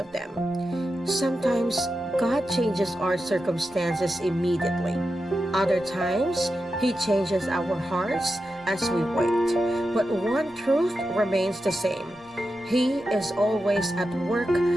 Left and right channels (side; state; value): both; normal; correlation 0.90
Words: them. Sometimes, God changes our circumstances immediately. Other times, He changes our hearts as we wait. But one truth remains the same. He is always at work